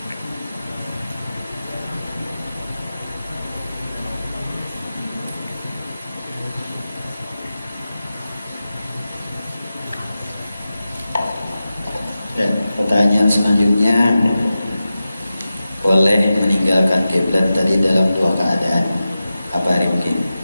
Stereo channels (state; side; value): inverted; both; correlation -0.93